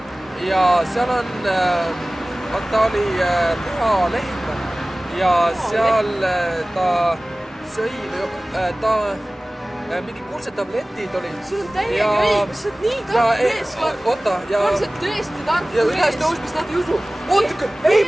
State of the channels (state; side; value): normal; both; correlation 0.98